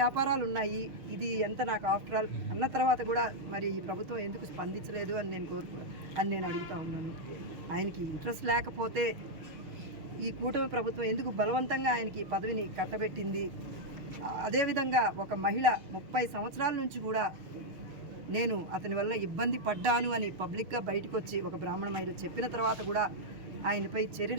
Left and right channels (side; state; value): left; late; 6.4 ms